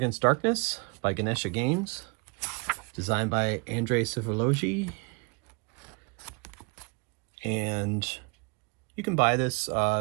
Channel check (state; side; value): quieter; left; 31.1 dB